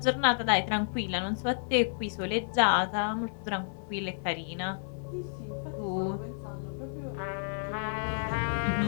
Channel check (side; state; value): right; silent; digital silence